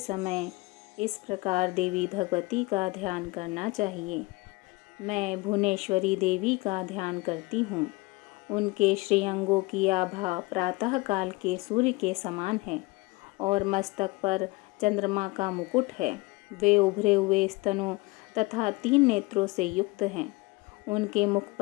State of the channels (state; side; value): quieter; right; 23.5 dB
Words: इस प्रकार देवी भगवती का ध्यान करना चाहिए। मैं भुवनेश्वरी देवी का ध्यान करती हूँ। उनके श्रीअंगों की आभा प्रातः काल के सूर्य के समान है और मस्तक पर चंद्रमा का मुकुट है। वे उभरे हुए स्तनों तथा 3 नेत्रों से युक्त हैं। उनके मुख